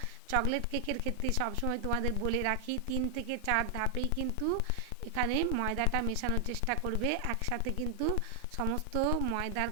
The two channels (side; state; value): both; different; correlation 0.00